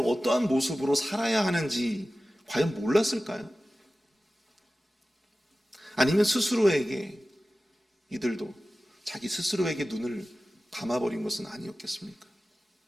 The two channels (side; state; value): both; normal; correlation 0.95